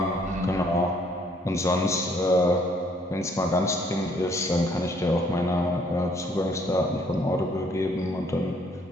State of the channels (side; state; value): both; normal; correlation 0.64